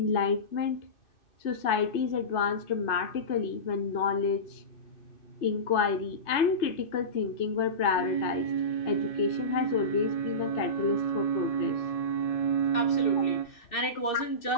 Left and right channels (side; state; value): right; late; 3.2 ms